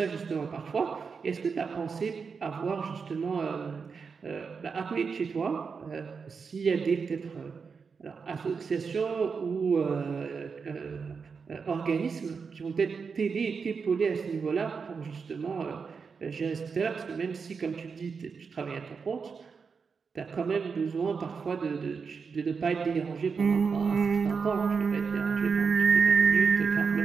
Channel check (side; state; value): left; quieter; 5.5 dB